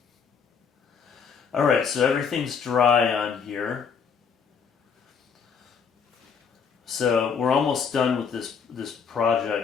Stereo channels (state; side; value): quieter; right; 6.3 dB